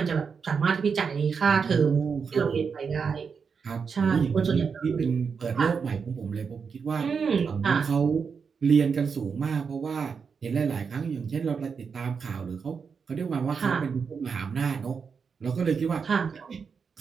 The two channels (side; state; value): left; quieter; 5.9 dB